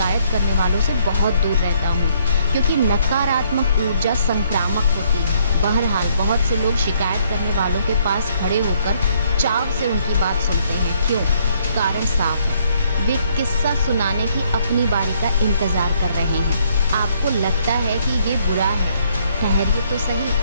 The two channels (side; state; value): both; inverted; correlation -0.68